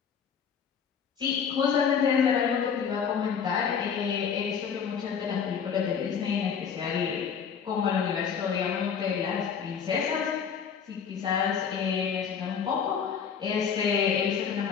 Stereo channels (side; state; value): right; quieter; 7.0 dB